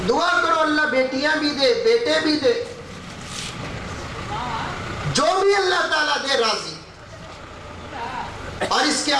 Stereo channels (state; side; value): identical; both; correlation 1.00